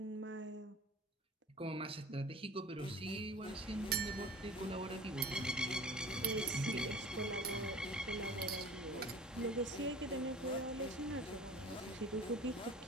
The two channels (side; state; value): both; normal; correlation 0.42